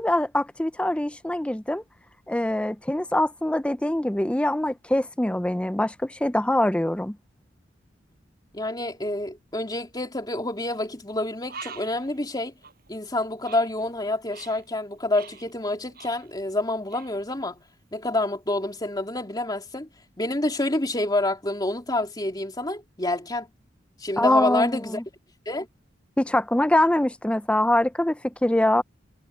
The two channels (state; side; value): normal; both; correlation 0.81